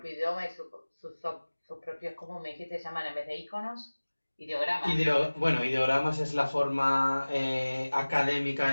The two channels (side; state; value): both; inverted; correlation -1.00